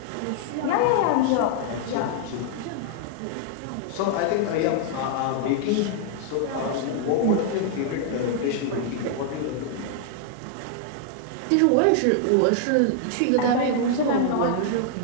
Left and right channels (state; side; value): different; both; correlation 0.00